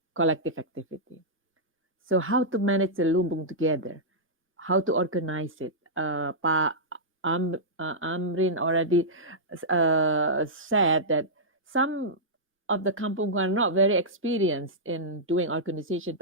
collective activity. So how to manage the lumbung together, how to organize it. Amrin already said that some of the kampung are not very experienced in doing organization,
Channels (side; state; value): both; normal; correlation -0.12